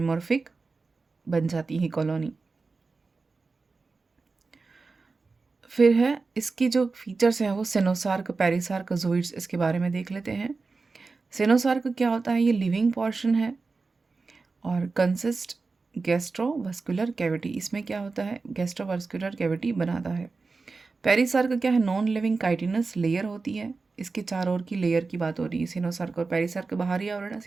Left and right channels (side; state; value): left; quieter; 4.1 dB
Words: बन जाती है कॉलोनी। फिर है इसकी जो फीचर्स हैं वो सेनोसार्क, पेरिसार्क, जूइड्स, इसके बारे में देख लेते हैं। सेनोसार्क क्या होता है? ये लिविंग पोर्शन है और कंसिस्ट गैस्ट्रोवास्कुलर कैविटी, इसमें क्या होता है? गैस्ट्रोवास्कुलर कैविटी बनाता है। पेरिसार्क क्या है? नॉन लिविंग काइटिनस लेयर होती है, इसके चारों ओर की लेयर की बात हो रही है। सिनोसार्क और पेरिसार्क बाहरी आवरण है,